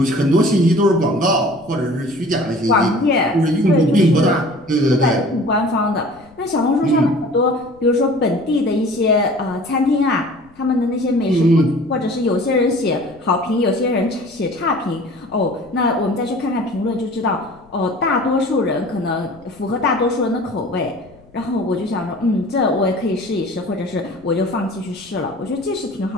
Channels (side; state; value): left; noise; rumble, 27 dB below the sound